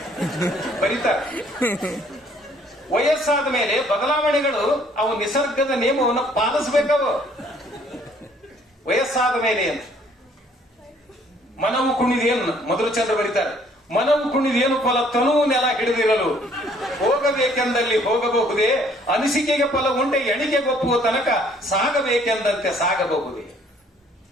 ಬರೀತಾರ. ವಯಸ್ಸಾದ ಮೇಲೆ ಬದಲಾವಣೆಗಳು ಅವು ನಿಸರ್ಗದ ನಿಯಮವನ್ನು ಪಾಲಿಸಬೇಕವು. ವಯಸ್ಸಾದ ಮೇಲೆ ಅಂತ ಮನವು ಕುಣಿದೇನು ಮಧುರಚಂದ್ರ ಬರೀತಾರೆ. ಮನವು ಕುಣಿದೇನು ಫಲ ತನು ನೆಲ ಹಿಡಿದಿರಲು ಹೋಗಬೇಕೆಂದಲ್ಲಿ ಹೋಗಬಹುದೇ, ಅನಿಸಿಕೆಗೆ ಫಲ ಉಂಟೆ ಎಣಿಕೆಗೊಪ್ಪುವ ತನಕ ಸಾಗಬೇಕೆಂದಂತೆ ಸಾಗಬಹುದೇ.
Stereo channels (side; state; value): both; normal; correlation 0.61